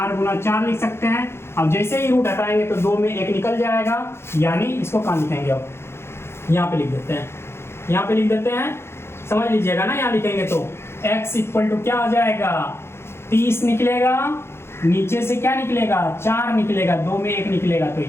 गुना 4 लिख सकते हैं। अब जैसे ही रूट हटाएंगे तो 2 में 1 निकल जाएगा, यानी इसको कहाँ लिखेंगे, अब यहाँ पे लिख देते हैं, यहाँ पे लिख देते हैं, समझ लीजिएगा ना। यहाँ लिखेंगे तो x इक्वल टू क्या हो जाएगा 30 निकलेगा, नीचे से क्या निकलेगा 4 निकलेगा, 2 में 1 निकलेगा, तो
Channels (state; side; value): late; right; 0.12 ms